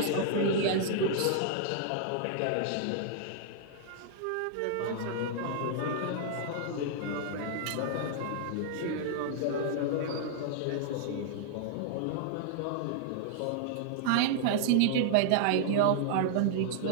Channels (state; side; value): different; both; correlation -0.01